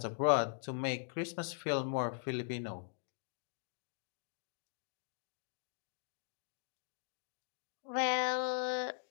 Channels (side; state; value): right; silent; digital silence